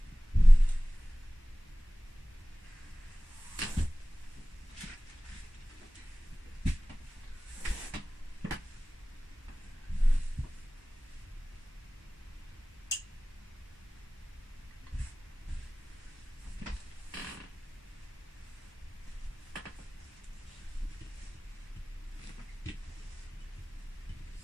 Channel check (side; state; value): both; normal; correlation 0.98